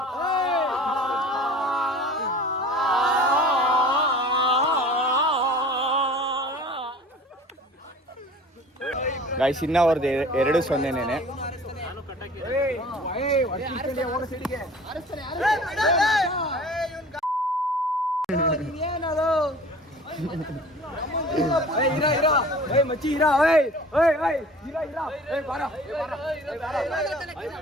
ಗಾಯ್ಸ್ ಇನ್ನ ಅವ್ರದ್ದು 2-0ನೇನೆ.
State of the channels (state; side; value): normal; both; correlation 0.44